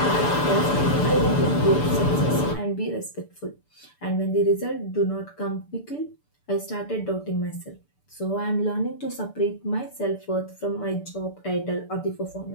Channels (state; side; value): late; right; 6.8 ms